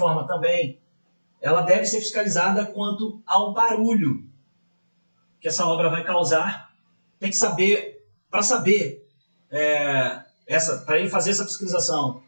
também, ela deve ser fiscalizada quanto ao barulho que essa obra vai causar. Tem que saber, para ele fazer essa fiscalização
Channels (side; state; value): both; inverted; correlation -1.00